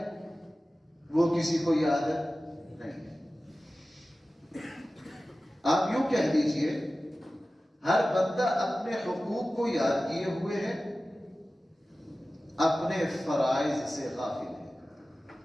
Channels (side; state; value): both; normal; correlation 0.96